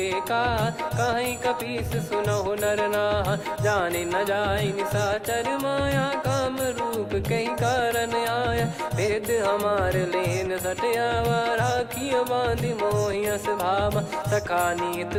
का, कहीं कपीस सुनहु नर नाहा। जाने न जाय निशाचर माया, काम रूप कई कारण आया। भेद हमार लेन सटयावा, राखियो बांधि मोहियस भावा। सखा नीत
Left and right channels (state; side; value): identical; both; correlation 1.00